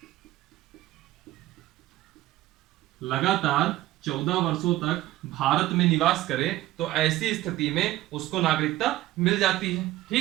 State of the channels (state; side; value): quieter; left; 15.9 dB